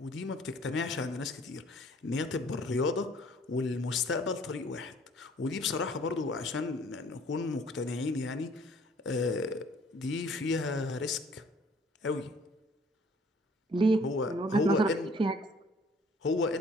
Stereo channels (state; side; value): normal; both; correlation 0.56